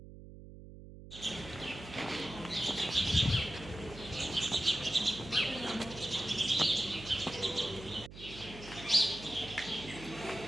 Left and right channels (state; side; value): noise; right; hum, 15 dB below the sound